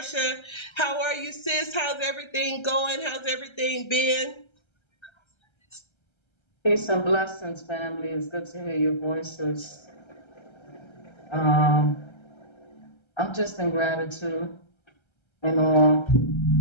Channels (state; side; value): late; right; 1.3 ms